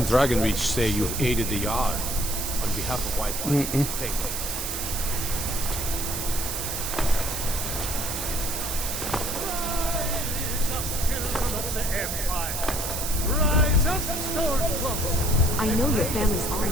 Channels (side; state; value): right; noise; hiss, 3 dB below the sound